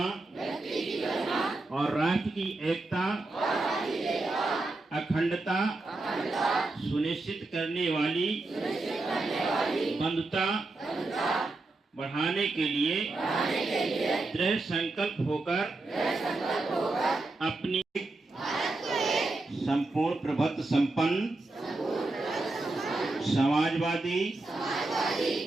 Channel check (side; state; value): left; quieter; 3.1 dB